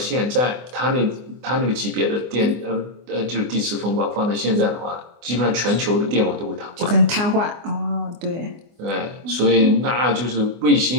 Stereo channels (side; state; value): left; late; 24 ms